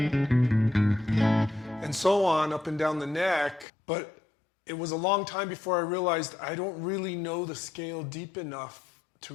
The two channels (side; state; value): right; drops out; at 3.7 s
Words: and so on up and down the neck. But it was a long time before I realized I don't really know the scale deep enough to